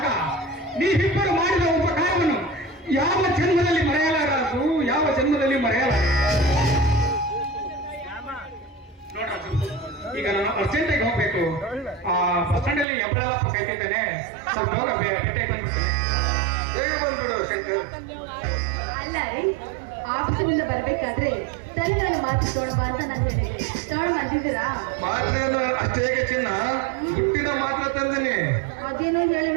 ನೀವಿಬ್ಬರು ಮಾಡಿದ ಉಪಕಾರವನ್ನು ಯಾವ ಜನ್ಮದಲ್ಲಿ ಮರೆಯಲಾರದು, ಯಾವ ಜನ್ಮದಲ್ಲಿ ಮರೆಯಲಾರ. ನೋಡ್ರಾಜು, ಈಗ ನಾನು ಅರ್ಜೆಂಟಾಗಿ ಹೋಗ್ಬೇಕು. ಆ ಬಸ್ ಸ್ಟ್ಯಾಂಡ್ ಅಲ್ಲಿ ಎಬ್ಬಳಪ್ಪ ಕಾಯ್ತಿದ್ದೇನೆ. ಸ್ವಲ್ಪ ಹೋಗ ಭೇಟಿಯಾಗಿ ಬಂದ್ಬಿಡ್ತೀನಿ. ಬೇಗ ಬಂದ್ಬಿಡು ಶಂಕರ್. ಅಲ್ಲ ರೀ, ಆಫೀಸಿನಿಂದ ಬರ್ಬೇಕಾದ್ರೆ ತಲೆಗಳನ್ನು ಮಾತು ತಗೊಳ್ಬಾ ಅಂತ ನಾನು ಹೇಳಿದೆ. ತಗೊಂಡು ಬಂದಿದ್ದೀರಾ? ಮಾತ್ರೆಯನ್ನು ಅಷ್ಟೇ ಚಿನ್ನ ಹುಟ್ಟಿದ ಮಾತ್ರ ತಂದಿನಿ. ಅದೇನೋ ಹೇಳಿ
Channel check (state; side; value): drops out; left; at 12.9 s